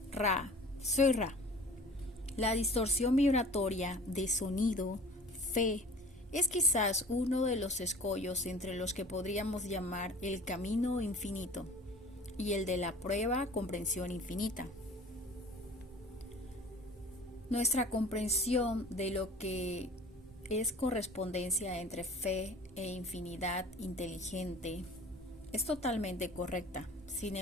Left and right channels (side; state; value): both; normal; correlation 0.45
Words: Ra, soy Ra. La distorsión vibratoria de sonido, fe, es quizás uno de los escollos entre los que podríamos llamar el camino infinito y el de la prueba comprensión infinita. Nuestra comprensión de lo que es correspondencia entre fe e infinidad inteligente es totalmente correcta. Sin